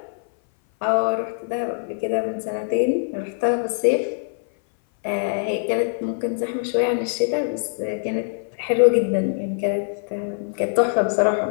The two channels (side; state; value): right; silent; 59 dB below the other